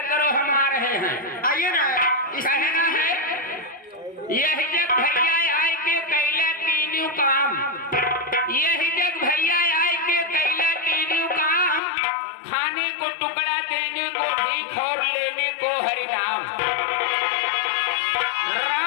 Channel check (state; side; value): drops out; right; at 11.8 s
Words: करो, हम आ रहे हैं। आइए ना। कहना है यही जग भैया आए के कैला तीनों काम, यही जग भैया आए के कैला तीनों काम, खाने को टुकड़ा देने को भीख और लेने को हरि नाम।